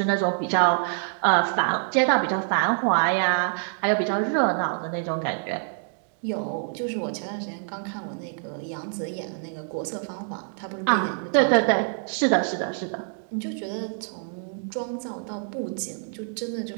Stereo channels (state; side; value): silent; left; 61 dB below the other